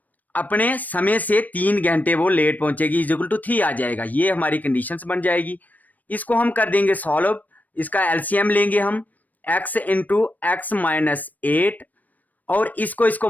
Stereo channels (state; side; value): late; right; 0.081 ms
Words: अपने समय से 3 घंटे वो लेट पहुंचेगी, इज इक्वल टू 3 आ जाएगा। ये हमारी कंडीशंस बन जाएगी। इसको हम कर देंगे सॉल्व, इसका एलसीएम लेंगे हम, x इंटू एक्स माइनस 8, और इसको